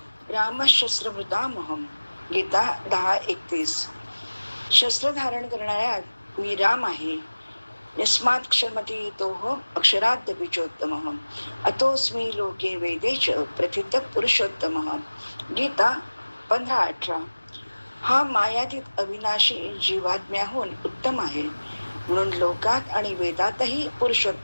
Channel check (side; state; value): both; inverted; correlation -1.00